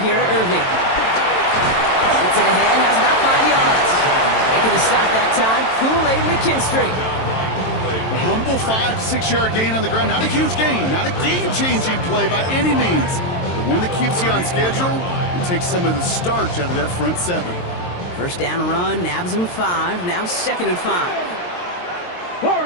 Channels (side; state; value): right; late; 22 ms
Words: to Irving. Gets it ahead, has about 5 yards. Making the stop that time, Kool-Aid McKinstry. A humble 5 to 6 yard gain on the ground. Not a huge gain, not a game-changing play by any means. But one that keeps you on schedule and takes some of the starch out of that front 7. 1st down run, nabs him 5, now 2nd and 5.